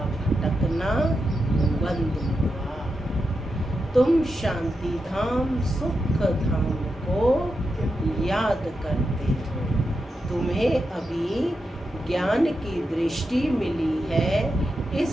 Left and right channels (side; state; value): both; normal; correlation 0.87